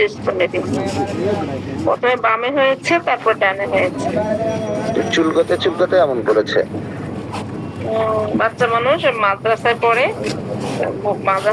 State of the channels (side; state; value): both; identical; correlation 1.00